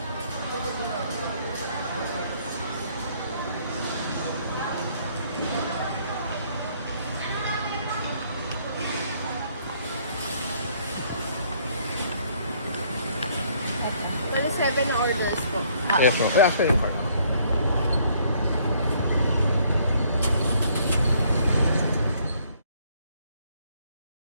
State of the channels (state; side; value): inverted; both; correlation -0.64